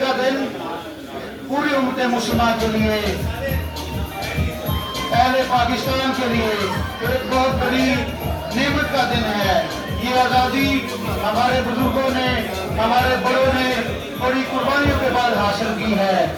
دن پوری امت مسلمان کے لیے، اہل پاکستان کے لیے ایک بہت بڑی نعمت کا دن ہے۔ یہ آزادی ہمارے بزرگوں نے، ہمارے بڑوں نے بڑی قربانیوں کے بعد حاصل کی ہے۔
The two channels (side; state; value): both; identical; correlation 1.00